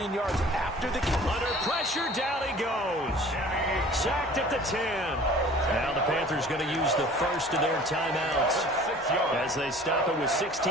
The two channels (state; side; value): normal; both; correlation 0.47